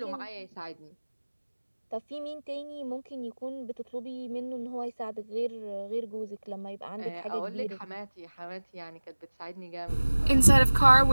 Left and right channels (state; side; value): inverted; both; correlation -1.00